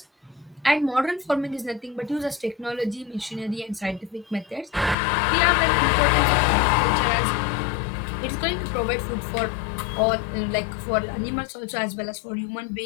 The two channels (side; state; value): right; drops out; at 5.0 s